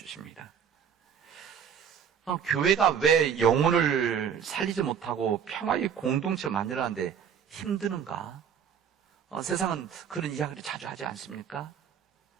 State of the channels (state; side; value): quieter; left; 7.8 dB